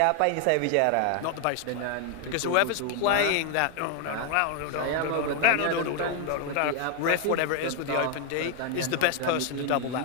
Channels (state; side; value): different; both; correlation 0.01